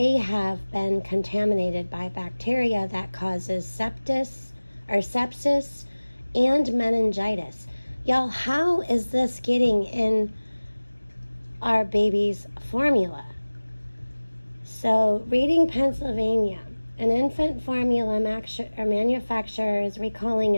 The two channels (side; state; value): both; inverted; correlation -1.00